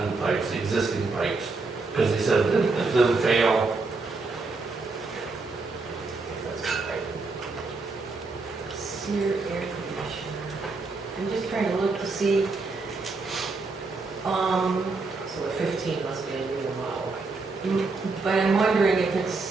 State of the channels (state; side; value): quieter; left; 3.9 dB